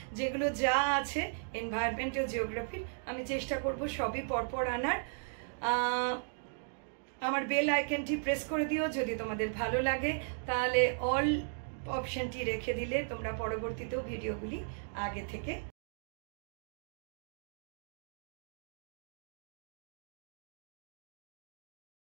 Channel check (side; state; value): left; silent; digital silence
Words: যেগুলো যা আছে এনভায়রনমেন্ট ও জিওগ্রাফির, আমি চেষ্টা করব সবই পরপর আনার। আমার বেল আইকনটি প্রেস করে দিও যদি তোমাদের ভালো লাগে, তাহলে অল অপশনটি রেখে দিলে তোমরা পরবর্তীতেও ভিডিওগুলি আগে থেকে